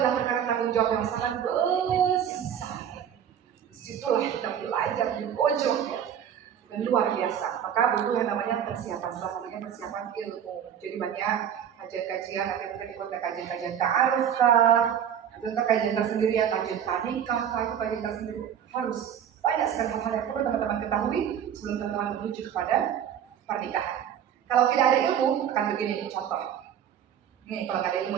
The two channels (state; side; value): quieter; left; 9.0 dB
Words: perkara tanggung jawab yang sangat besar. Disitulah kita belajar di pojok ya. Dan luar biasa. Maka butuh yang namanya persiapan, salah satunya persiapan ilmu. Jadi banyak kajian-kajian, nanti mungkin ikut kajian-kajian ta'aruf kah, atau kajian tersendirian, kajian nikah kah, itu kajian tersendiri. Harus banyak sekali hal-hal yang perlu teman-teman ketahui sebelum teman-teman menuju kepada pernikahan. Kalau tidak ada ilmu, akan begini nih contoh. Nih kalau nggak ada ilmu